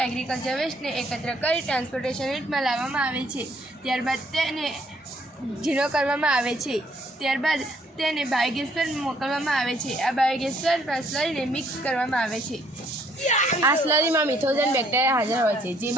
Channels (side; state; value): both; normal; correlation 0.66